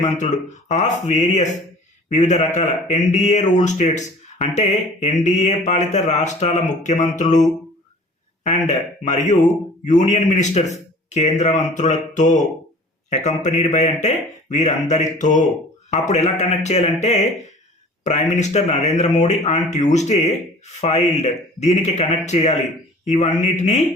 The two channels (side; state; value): both; normal; correlation 0.46